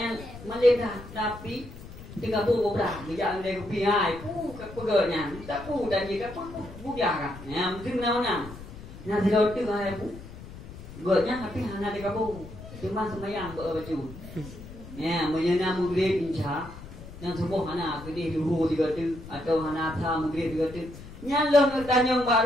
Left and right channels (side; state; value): left; noise; rumble, 14 dB below the sound